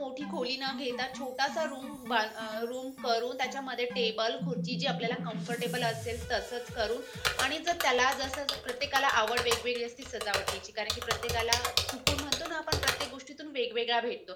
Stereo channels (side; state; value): both; identical; correlation 1.00